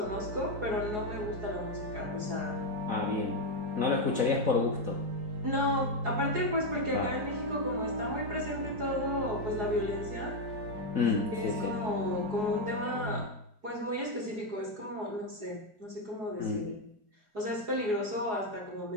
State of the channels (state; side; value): late; left; 4.7 ms